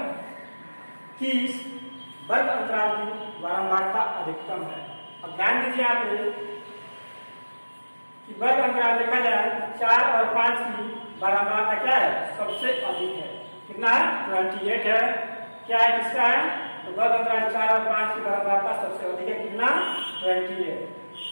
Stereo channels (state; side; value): inverted; both; correlation -1.00